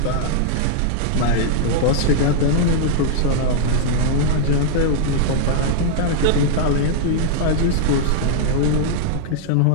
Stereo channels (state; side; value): different; both; correlation -0.01